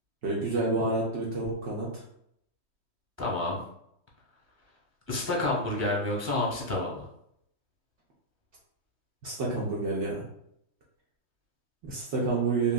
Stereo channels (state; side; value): late; left; 3.1 ms